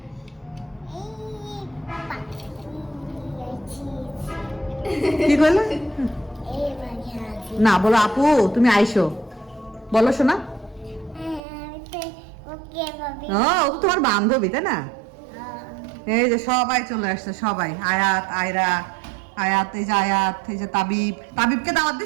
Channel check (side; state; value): left; drops out; at 11.4 s